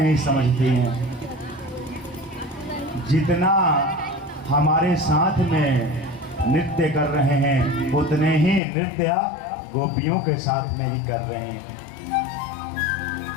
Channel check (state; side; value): drops out; right; at 8.6 s